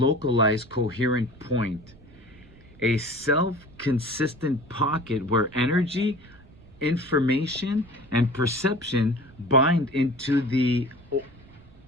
coherent point, a self-consistent pocket where energy, information, and perception bind into the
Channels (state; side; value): noise; right; rumble, 23 dB below the sound